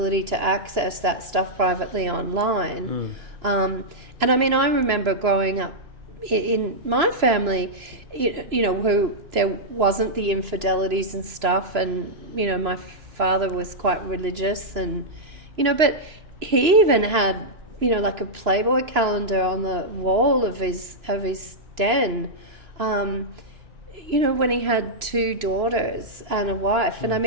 to access that stuff privately online. And I mean, I remember growing up in my family, who there wasn't the infidelities and stuff, and my father was quite religious, and but he even had like a Playboy calendar on the wall of his den, when he had 2 daughters and a wife. And I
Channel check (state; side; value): late; left; 3.0 ms